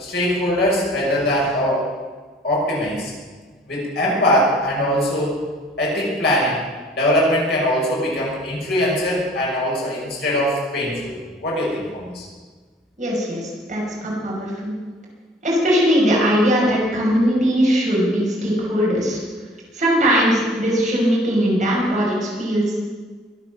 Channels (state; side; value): normal; both; correlation 0.52